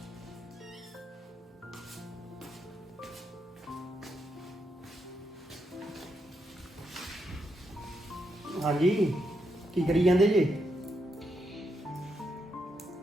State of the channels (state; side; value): normal; both; correlation 0.81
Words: ਹਾਂਜੀ ਕੀ ਕਰੀ ਜਾਂਦੇ ਜੇ?